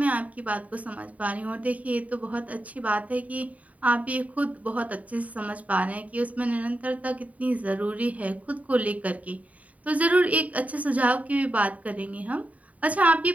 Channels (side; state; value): left; late; 0.070 ms